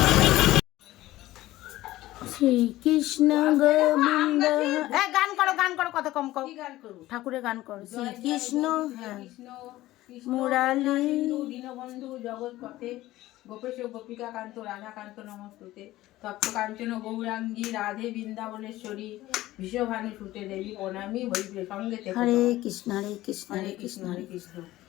শ্রীকৃষ্ণ গোবিন্দ। হ্যাঁ গান করো, গান করো, কত কম করো, ঠাকুরের গান করো। শ্রীকৃষ্ণ হ্যাঁ কৃষ্ণ মুরালি দীনবন্ধু জগৎপথে গোপেশ গোপিকা কান্ত রাধাকান্ত নমস্তুতে তপ্ত কাঞ্চন গৌরাঙ্গী রাধে বৃন্দাবনেশ্বরী বিশ্বভানু সুতে দেবী প্রণামী হরিপ্রিয় সঙ্গে হরে কৃষ্ণ হরে কৃষ্ণ হরে হরে কৃষ্ণ কৃষ্ণ হরে কৃষ্ণ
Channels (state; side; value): quieter; right; 16.3 dB